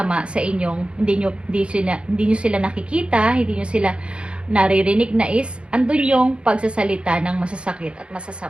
sa inyong, hindi nyo sila nakikita, hindi nyo sila naririnig na is, andun yung pagsasalita ng masasakit at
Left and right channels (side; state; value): left; late; 0.057 ms